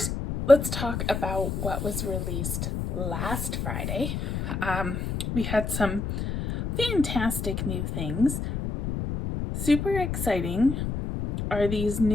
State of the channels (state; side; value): noise; left; rumble, 3 dB below the sound